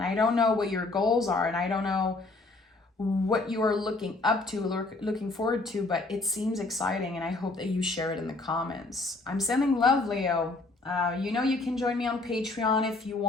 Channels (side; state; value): right; quieter; 3.3 dB